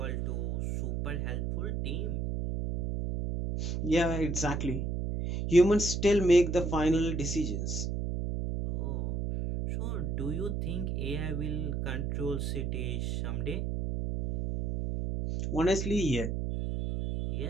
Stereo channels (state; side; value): noise; right; hum, 1 dB below the sound